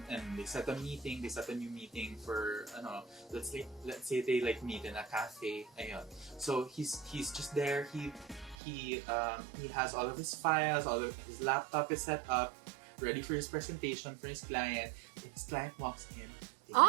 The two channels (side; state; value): left; drops out; at 8.6 s